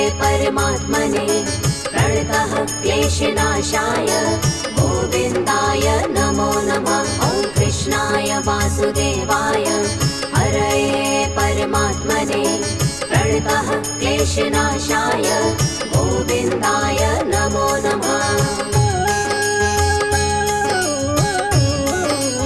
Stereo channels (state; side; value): noise; right; rumble, 19 dB below the sound